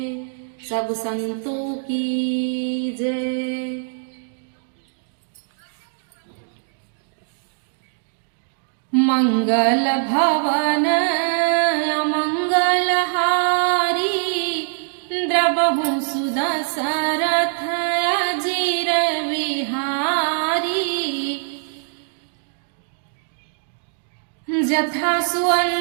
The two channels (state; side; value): silent; left; digital silence